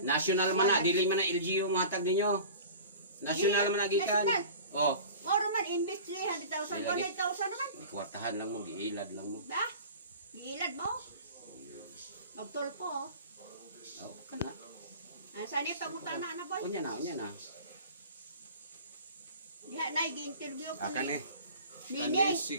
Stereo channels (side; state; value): both; inverted; correlation -0.39